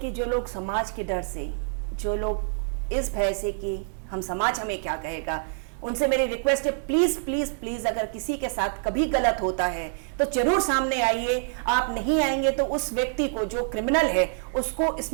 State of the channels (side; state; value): left; silent; 61 dB below the other